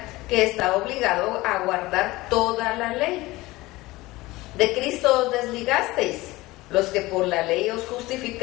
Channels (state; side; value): quieter; right; 19.9 dB